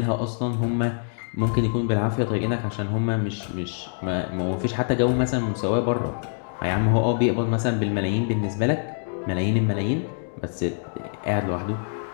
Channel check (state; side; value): silent; right; digital silence